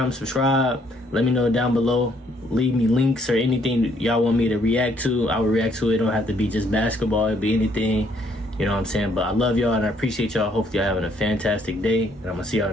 subscribe. Let me know down below. Leave me links or anything y'all want me to react to. I will react to it. It don't have to be just basketball. It'll be anything. You know what I'm saying? But I love y'all and I appreciate y'all. Hopefully y'all having a fantastic day. And I'm going to see y'all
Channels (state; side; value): normal; both; correlation 0.67